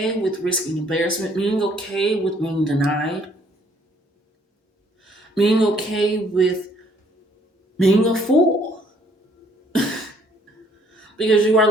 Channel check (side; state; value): both; normal; correlation 0.63